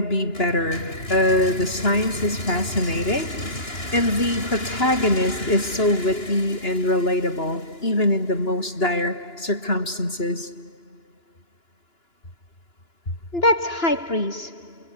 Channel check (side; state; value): right; late; 2.9 ms